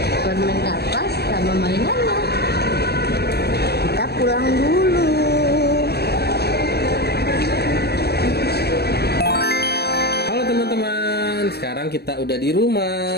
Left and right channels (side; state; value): right; late; 0.47 ms